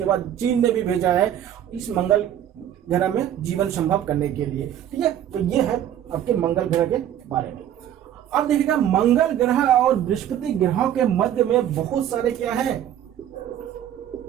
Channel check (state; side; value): quieter; left; 10.8 dB